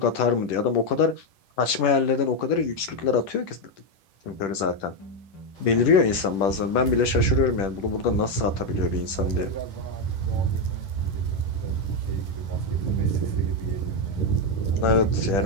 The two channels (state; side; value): late; right; 10 ms